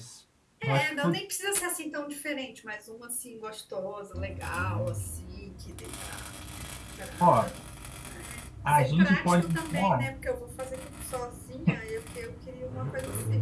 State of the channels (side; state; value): both; identical; correlation 1.00